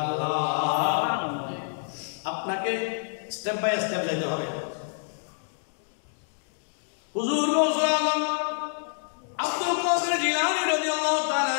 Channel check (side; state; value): right; silent; digital silence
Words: আপনাকে স্টেপ বাই স্টেপ যাইতে হবে। হুজুর গৌসুল আজম আব্দুল কাদের জিলানী রাদিয়াল্লাহু তাআলা